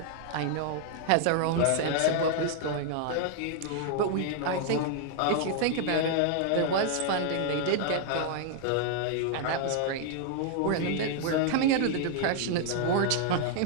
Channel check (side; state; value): both; different; correlation 0.00